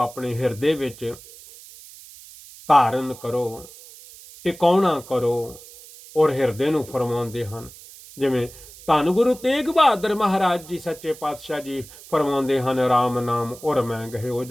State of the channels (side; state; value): right; noise; hiss, 19 dB below the sound